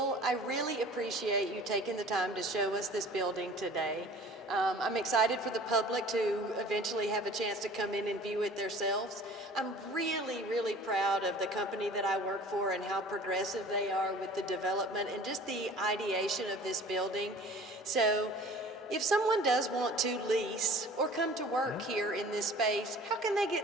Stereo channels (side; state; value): both; normal; correlation 0.46